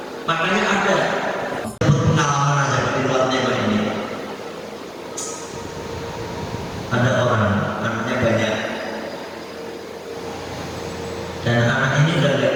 makanya ada pengalaman aja di luar tema ini. Ada orang anaknya banyak dan anak ini udah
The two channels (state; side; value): identical; both; correlation 1.00